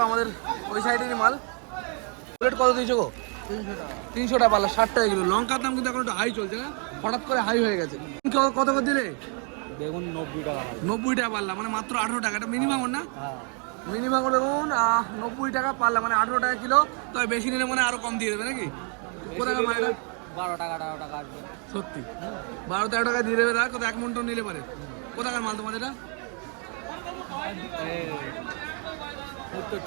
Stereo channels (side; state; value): left; quieter; 38.6 dB